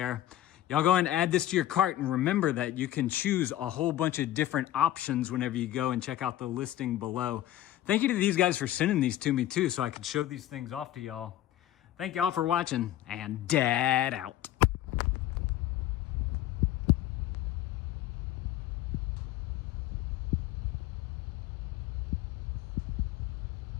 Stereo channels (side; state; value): right; quieter; 13.4 dB